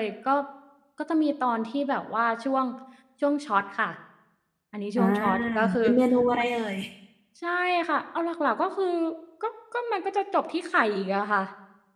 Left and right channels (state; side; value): identical; both; correlation 1.00